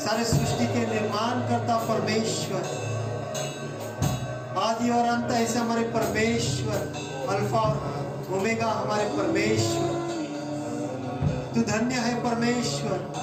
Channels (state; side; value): identical; both; correlation 1.00